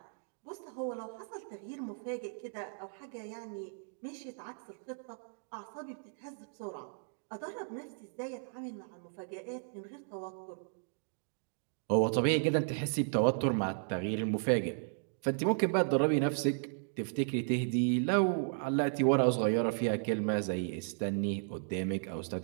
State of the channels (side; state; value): left; silent; digital silence